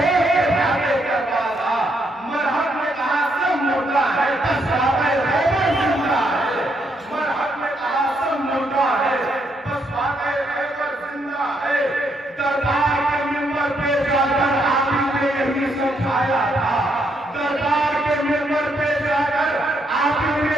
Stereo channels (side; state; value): both; normal; correlation 0.75